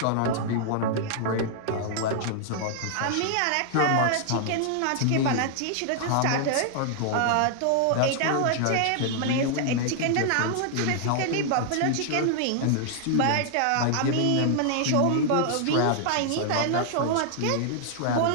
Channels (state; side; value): different; both; correlation 0.00